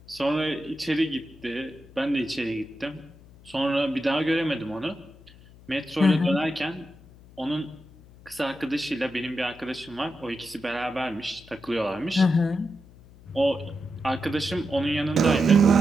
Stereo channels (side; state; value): left; noise; hum, 23 dB below the sound